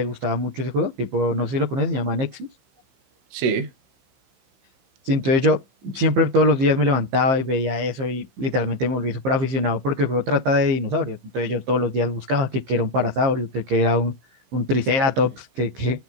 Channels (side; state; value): left; late; 15 ms